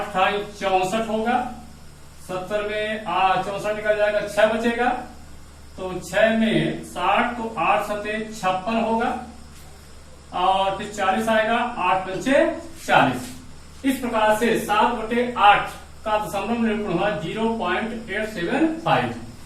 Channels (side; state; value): both; identical; correlation 1.00